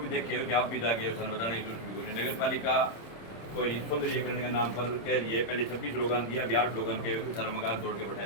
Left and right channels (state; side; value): late; right; 26 ms